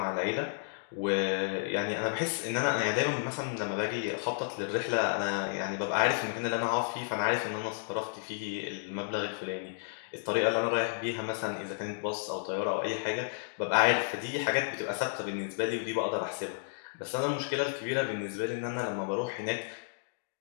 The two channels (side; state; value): right; silent; digital silence